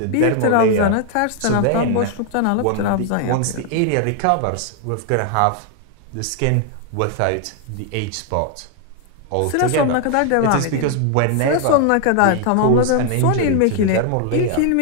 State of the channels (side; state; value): both; different; correlation 0.00